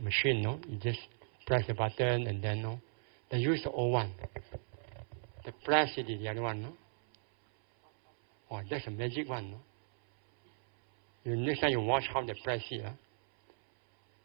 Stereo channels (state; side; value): silent; left; 54 dB below the other